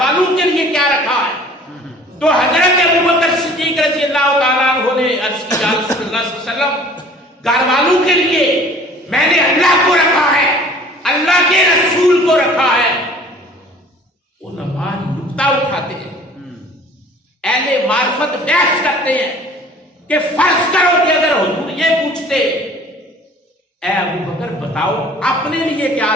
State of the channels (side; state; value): both; normal; correlation 0.49